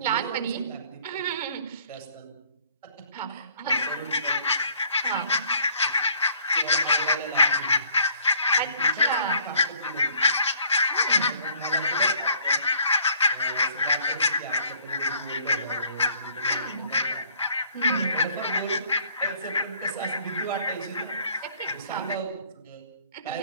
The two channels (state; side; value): inverted; both; correlation -0.59